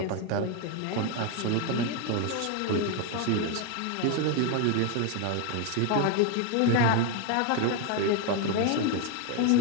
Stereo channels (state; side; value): different; both; correlation 0.02